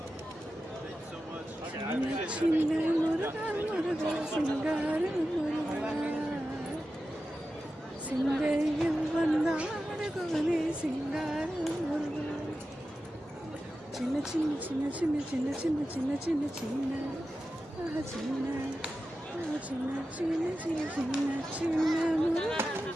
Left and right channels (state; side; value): normal; both; correlation 0.93